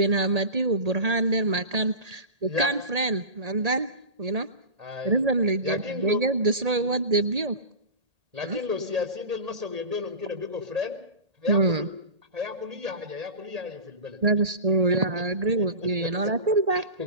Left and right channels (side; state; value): left; late; 1.8 ms